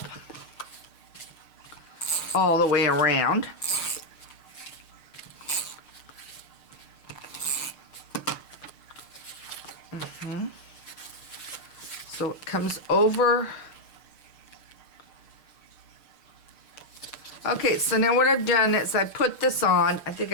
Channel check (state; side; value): late; right; 6.6 ms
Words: all the way around. So it comes over Okay, so now what I've done is I put this on. I think